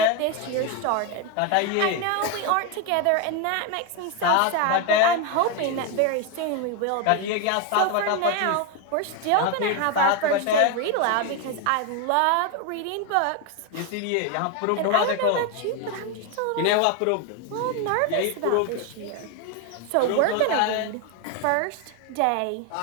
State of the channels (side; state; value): both; different; correlation 0.02